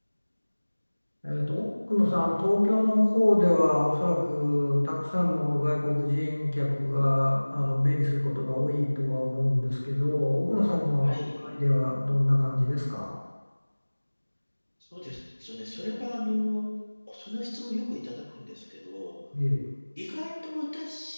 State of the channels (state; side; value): inverted; both; correlation -1.00